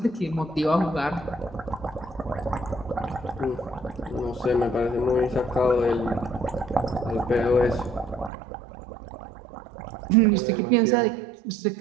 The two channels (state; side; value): drops out; left; at 8.3 s